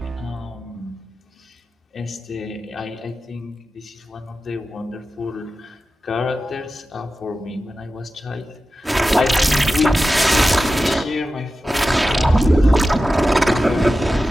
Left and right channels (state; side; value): normal; both; correlation 0.93